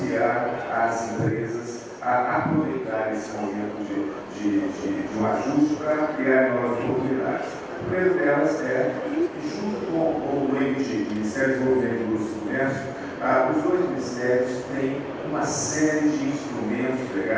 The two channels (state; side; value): identical; both; correlation 1.00